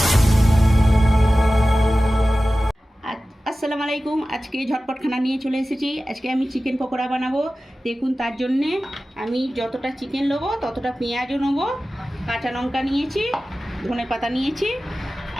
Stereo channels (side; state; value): both; normal; correlation 0.96